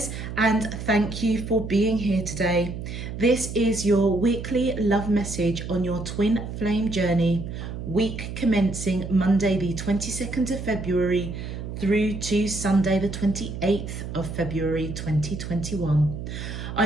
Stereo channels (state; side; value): noise; right; hum, 7 dB below the sound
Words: and thank you for being here today. This is your weekly love message on your twin flame journey, week commencing Monday the 22nd of February through to Sunday the 28th of February 2021.